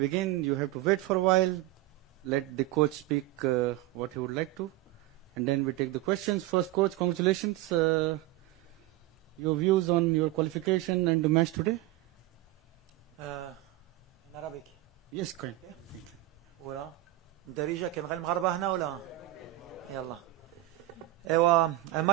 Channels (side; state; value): left; quieter; 16.8 dB